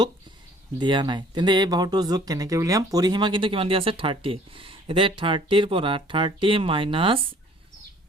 দিয়া নাই। তেন্তে এই বাহুটোৰ যোগ কেনেকৈ উলিয়াম? পৰিসীমা কিন্তু কিমান দিয়া আছে 30। এতিয়া 30ৰ পৰা 30 মাইনাছ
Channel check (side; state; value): both; normal; correlation 0.54